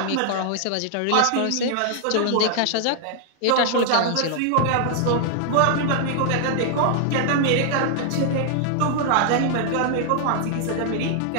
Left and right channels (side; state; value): both; different; correlation 0.00